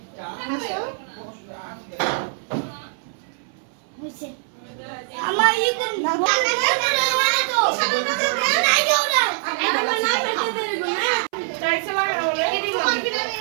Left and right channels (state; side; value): silent; left; 60 dB below the other